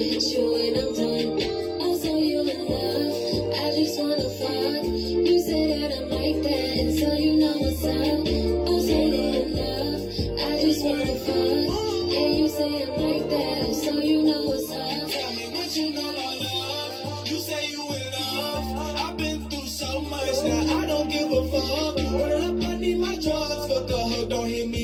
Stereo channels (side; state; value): both; identical; correlation 1.00